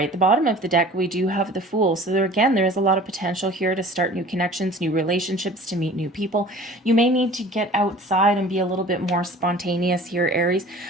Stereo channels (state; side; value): normal; both; correlation 0.45